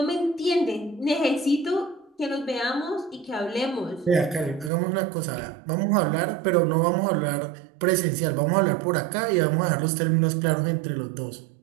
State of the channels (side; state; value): left; drops out; at 4.7 s